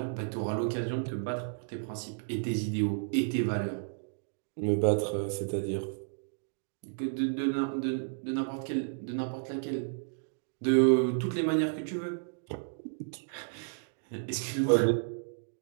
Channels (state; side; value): silent; left; digital silence